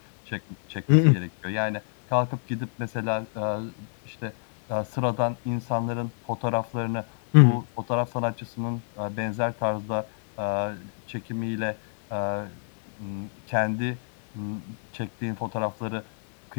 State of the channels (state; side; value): silent; right; 60 dB below the other